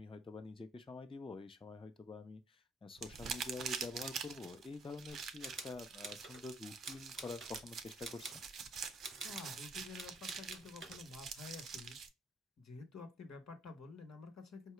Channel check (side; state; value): both; normal; correlation 0.65